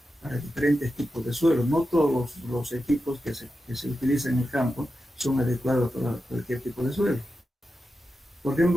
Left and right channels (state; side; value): normal; both; correlation 0.90